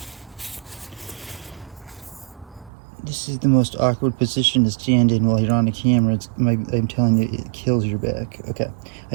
This is the most awkward position to stand in while you're on the camera. I'm telling you, it kills your back. Okay,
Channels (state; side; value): drops out; left; at 2.7 s